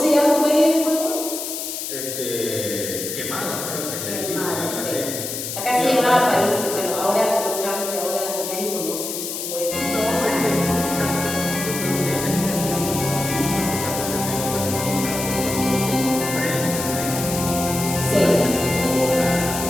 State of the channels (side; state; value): left; noise; hiss, 5 dB below the sound